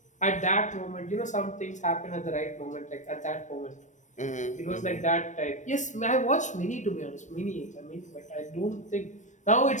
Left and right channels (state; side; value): late; right; 0.35 ms